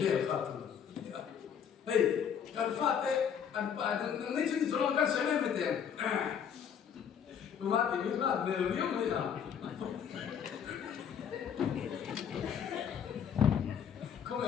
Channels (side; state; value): right; quieter; 7.9 dB